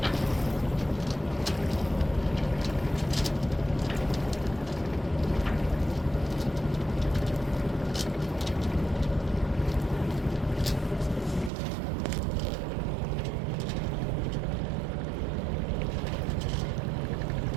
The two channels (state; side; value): drops out; left; at 11.5 s